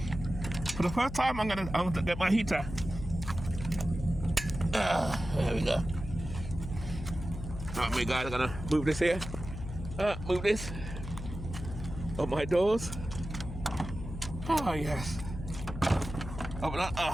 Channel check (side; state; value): left; noise; hum, 9 dB below the sound